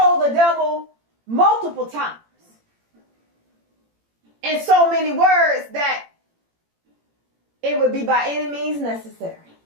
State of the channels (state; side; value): late; left; 18 ms